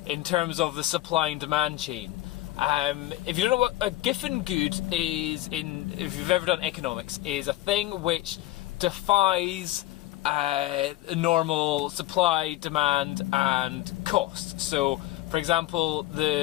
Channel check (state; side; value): quieter; right; 16.1 dB